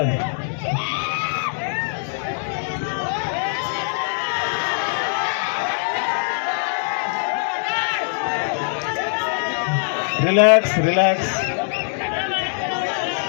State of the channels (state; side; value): silent; right; 64 dB below the other